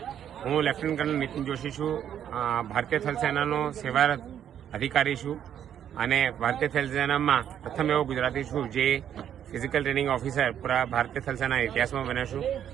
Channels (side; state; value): left; quieter; 9.7 dB